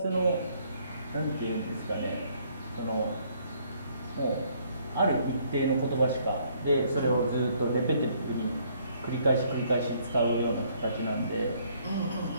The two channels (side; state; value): both; inverted; correlation -0.65